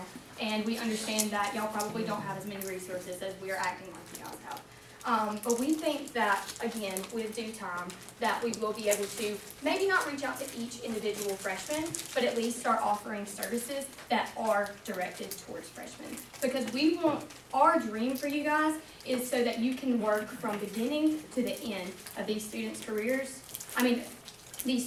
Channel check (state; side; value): identical; both; correlation 1.00